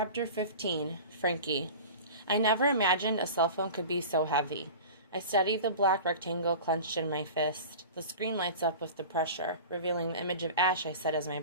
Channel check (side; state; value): both; inverted; correlation -0.35